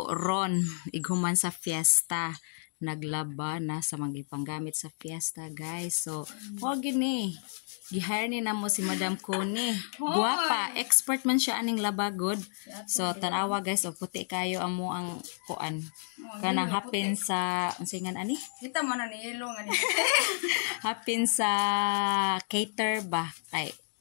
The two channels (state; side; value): silent; right; digital silence